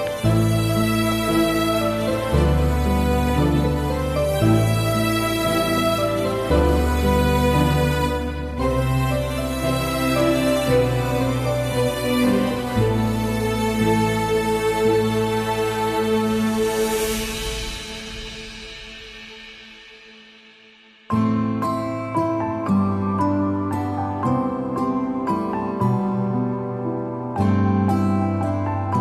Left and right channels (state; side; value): identical; both; correlation 1.00